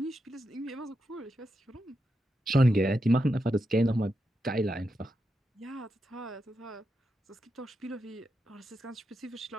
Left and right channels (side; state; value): both; normal; correlation 0.86